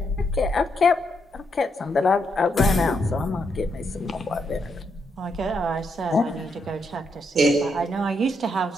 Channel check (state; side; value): normal; both; correlation 0.78